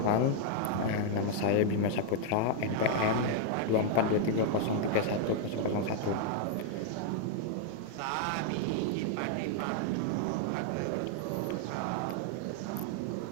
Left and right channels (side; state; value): both; different; correlation 0.00